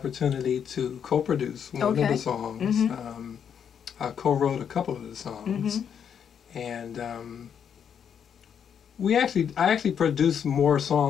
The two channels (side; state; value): right; quieter; 7.9 dB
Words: to co-produce one of the songs. I co-wrote a couple of the songs, and I actually produced more